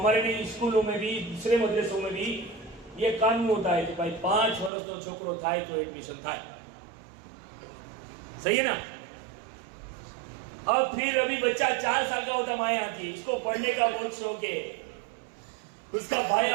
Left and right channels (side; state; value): left; drops out; at 4.7 s